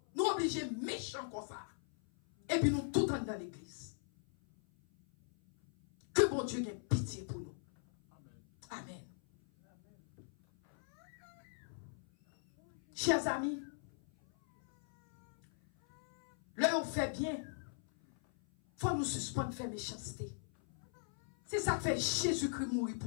Nous obligés méchants comme ça. Et puis nous tout dans l'église. Que bon Dieu ait pitié pour nous. Amen. Chers amis, là on fait bien. Faut nous suspendre faire méchanceté. C'est ça que fait Jésus-Christ mourir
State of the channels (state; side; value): silent; right; 52 dB below the other